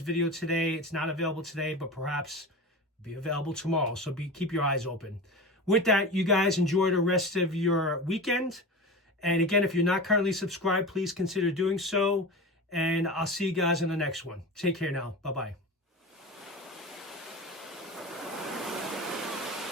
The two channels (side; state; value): both; normal; correlation 0.29